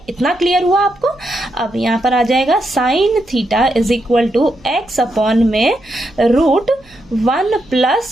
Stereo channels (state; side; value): noise; right; hum, 28 dB below the sound